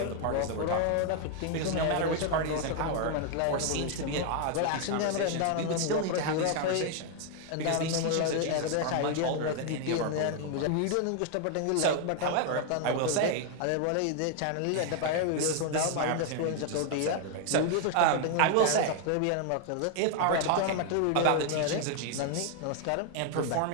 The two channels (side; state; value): both; different; correlation 0.00